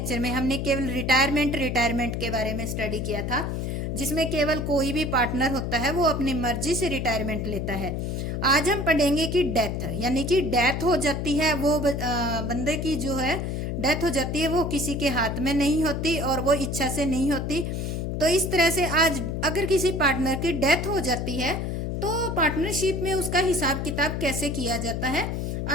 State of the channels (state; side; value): noise; left; hum, 2 dB below the sound